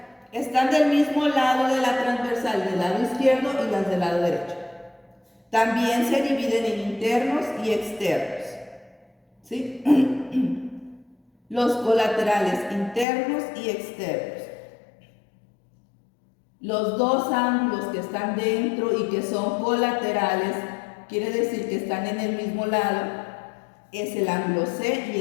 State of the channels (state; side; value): drops out; right; at 13.1 s